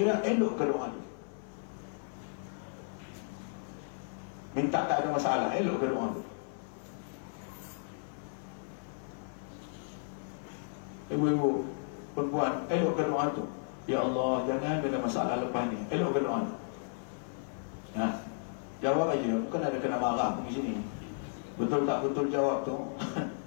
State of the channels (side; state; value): right; silent; 55 dB below the other